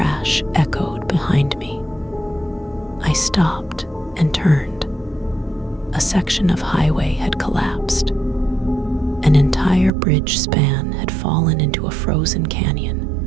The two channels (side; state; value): left; drops out; at 9.9 s